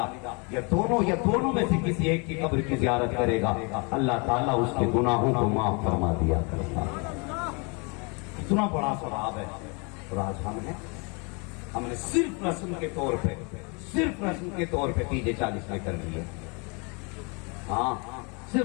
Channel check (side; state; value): right; quieter; 32.4 dB